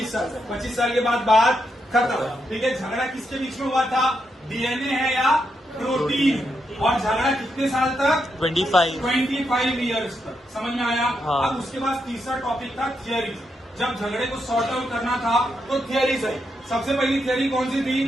साल तक। 25 साल के बाद बात खत्म। ठीक है, झगड़ा किसके बीच में हुआ था? डीएनए है या प्रोटीन? और झगड़ा कितने साल तक? 25 ईयर्स तक। समझ में आया? हाँ। अब उसके बाद तीसरा टॉपिक था थियरी। जब झगड़े को सॉर्ट आउट करना था तो थियरीज आई। सबसे पहली थियरी कौन सी थी?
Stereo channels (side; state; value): both; normal; correlation 0.82